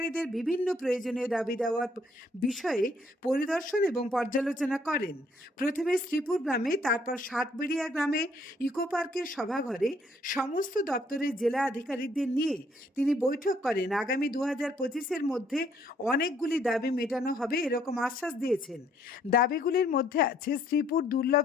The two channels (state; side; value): normal; both; correlation 0.66